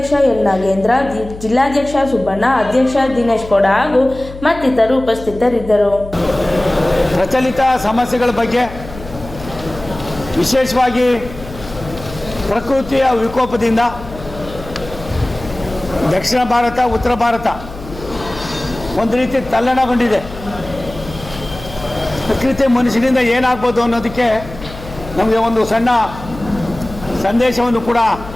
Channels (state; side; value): noise; left; hum, 14 dB below the sound